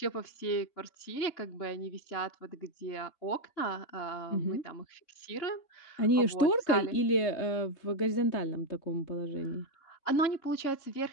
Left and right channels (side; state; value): right; late; 3.6 ms